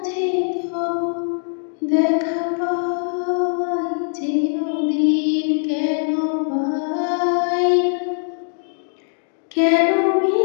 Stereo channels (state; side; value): silent; right; digital silence